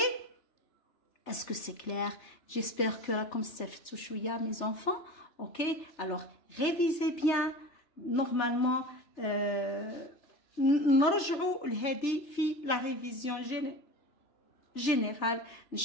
Est-ce que c'est clair? J'espère que comme ça fait chouïa mes enfants. Ok. Alors révisez bien. Normalement نرجعوا لهذه في لا ريفيزيون جينيرال ان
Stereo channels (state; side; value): late; right; 3.3 ms